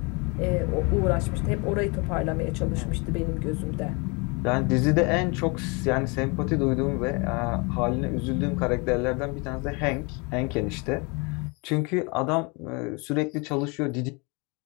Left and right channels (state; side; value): quieter; right; 30.0 dB